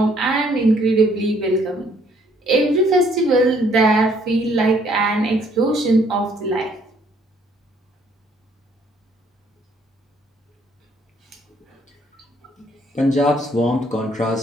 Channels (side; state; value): both; normal; correlation 0.64